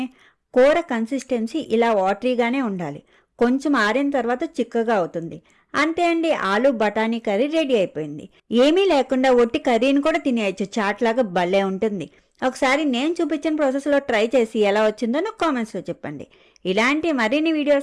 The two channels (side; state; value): both; identical; correlation 1.00